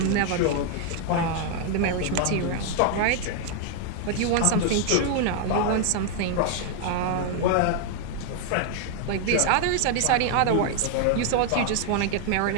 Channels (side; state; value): both; different; correlation 0.00